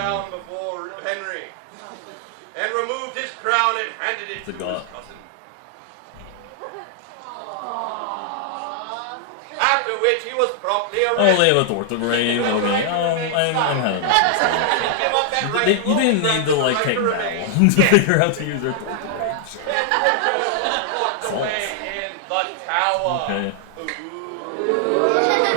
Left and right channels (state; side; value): different; both; correlation 0.00